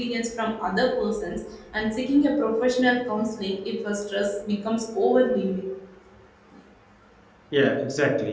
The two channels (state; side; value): identical; both; correlation 1.00